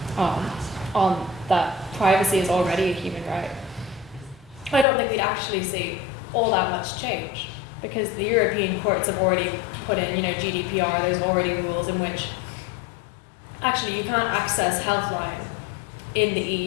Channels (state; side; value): drops out; right; at 4.9 s